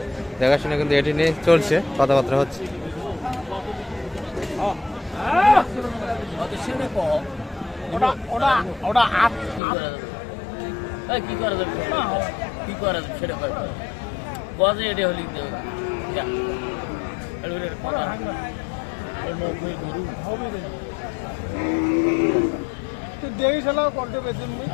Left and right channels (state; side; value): drops out; right; at 9.6 s